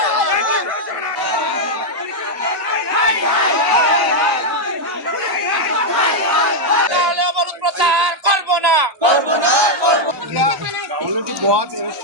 50 প্রচার করব না, করব না, করব না। অলরেডি बहुत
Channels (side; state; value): left; late; 1.0 ms